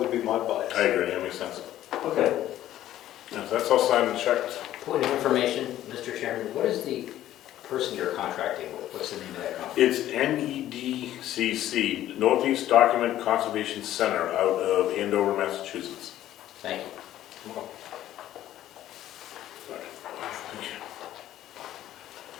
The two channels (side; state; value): right; quieter; 13.0 dB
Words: be my bias. I agree, that makes sense. okay. Yeah, so that's all signed and checked. Point of information, Mr. Chairman, what is the person you're contracting with? What's the name of that company? It's NEDCC, Northeast Document Conservation Center, out of Andover, Massachusetts. Thank you.